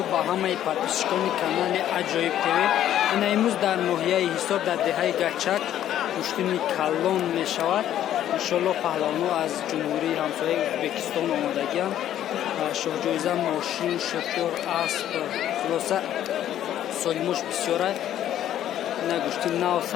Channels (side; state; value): right; quieter; 11.5 dB